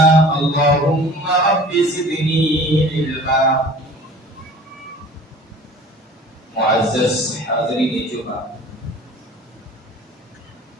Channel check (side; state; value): both; normal; correlation 0.45